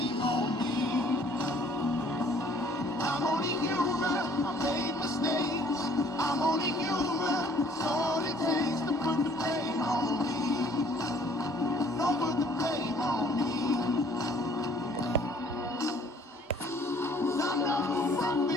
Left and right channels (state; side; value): normal; both; correlation 0.57